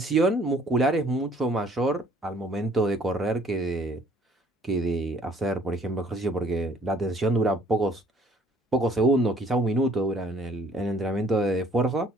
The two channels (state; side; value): normal; both; correlation 0.58